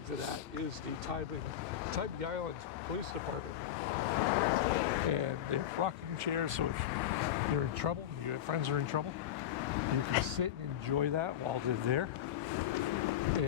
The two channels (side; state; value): right; quieter; 10.8 dB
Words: to that is the Tybee Island Police Department. And they have rocking chairs, so if you're in trouble, your friends are in trouble, you can sit and enjoy that while they're there.